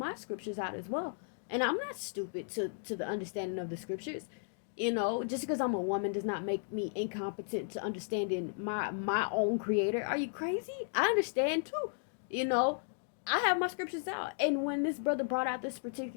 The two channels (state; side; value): silent; right; digital silence